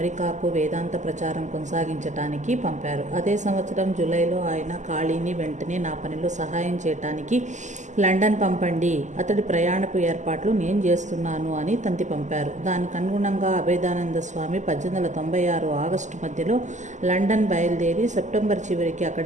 వేదాంత ప్రచారం కొనసాగించటానికి పంపారు. అదే సంవత్సరం జూలైలో ఆయన ఖాళీని వెంటనే నా పనిలో సహాయం చేయటానికి లండన్ పంపండి, అతడి ప్రయాణపు ఏర్పాట్లు నేను చేస్తున్నాను అని తంతి పంపారు. దానికి అనుగుణంగా అభేదానంద స్వామి 1896 ఆగస్టు మధ్యలో లండన్ బయలుదేరి సెప్టెంబర్ చివరికి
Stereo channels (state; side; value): late; left; 0.34 ms